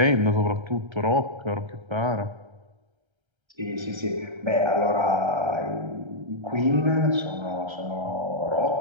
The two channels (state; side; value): late; left; 1.3 ms